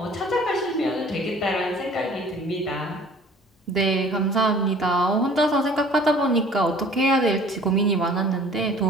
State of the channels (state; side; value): normal; both; correlation 0.50